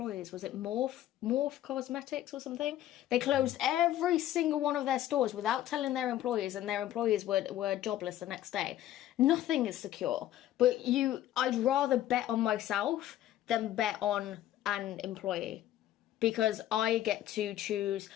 Was it Morph Cosmetics or something? They closed every single one of their stores without telling their employees, and their employees were jobless the next day. Nothing is secure. But I'd rather bet on myself than bet on an employee, because I get to choose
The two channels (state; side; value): quieter; right; 12.9 dB